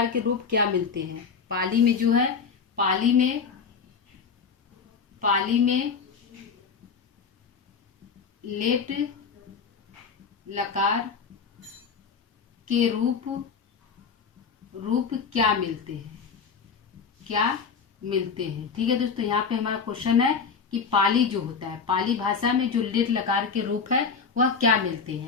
के रूप क्या मिलते हैं, पाली में जो है पाली में लेट लकार के रूप क्या मिलते हैं। ठीक है दोस्तों, यहाँ पे हमारा क्वेश्चन है कि पाली जो होता है, पाली भाषा में जो लेट लकार के रूप है वह क्या मिलते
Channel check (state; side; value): quieter; right; 5.7 dB